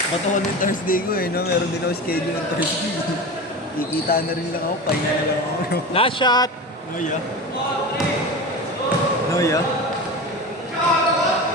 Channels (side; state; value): both; normal; correlation 0.28